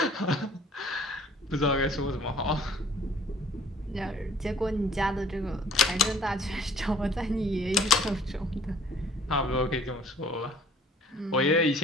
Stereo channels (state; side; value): normal; both; correlation 0.55